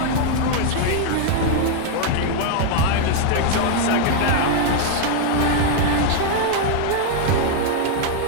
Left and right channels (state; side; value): different; both; correlation 0.00